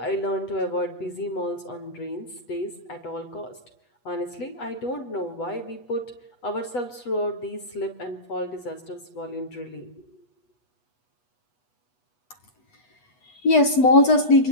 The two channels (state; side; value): late; right; 8.2 ms